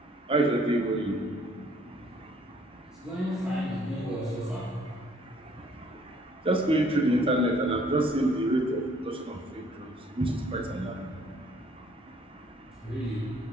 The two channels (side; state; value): both; normal; correlation 0.61